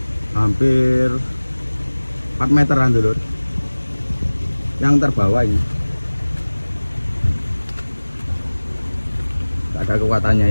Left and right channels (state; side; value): inverted; both; correlation -1.00